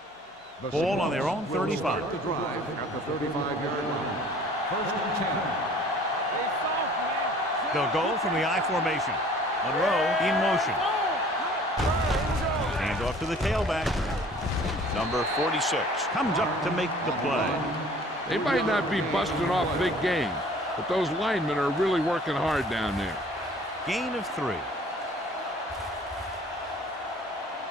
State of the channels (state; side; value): normal; both; correlation 0.51